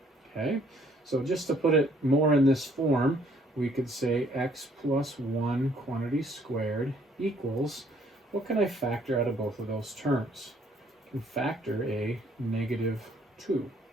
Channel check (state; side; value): normal; both; correlation 0.63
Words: Okay, so just to put it more in this form, we could say x plus 1 quantity squared equals, what can I factor out of both of those terms? I can factor a negative 2.